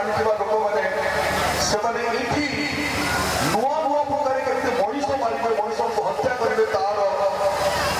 ଲୋକମାନେ ସେମାନେ ଏଇଠି ନୂଆ ନୂଆ ପ୍ରକାର କେମିତି ମଣିଷ ମାରିବେ, ମଣିଷକୁ ହତ୍ୟା କରିବେ ତାର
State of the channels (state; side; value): identical; both; correlation 1.00